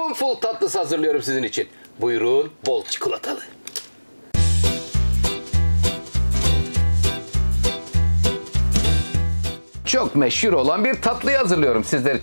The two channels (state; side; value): inverted; both; correlation -1.00